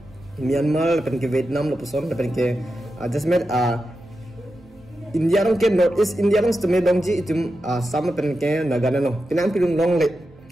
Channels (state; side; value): noise; right; hum, 29 dB below the sound